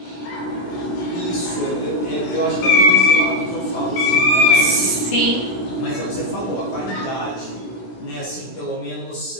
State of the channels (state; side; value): late; right; 16 ms